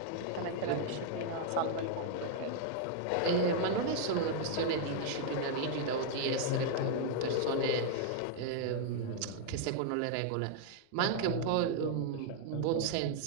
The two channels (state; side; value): different; both; correlation -0.01